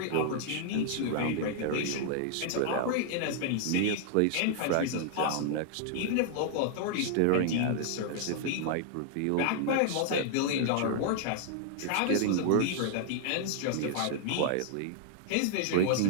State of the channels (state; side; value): different; both; correlation 0.00